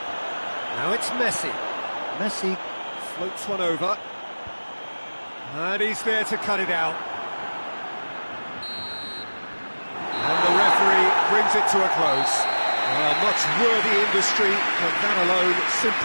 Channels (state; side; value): inverted; both; correlation -1.00